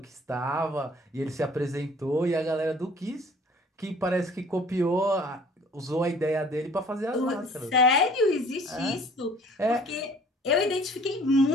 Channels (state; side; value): normal; both; correlation 0.53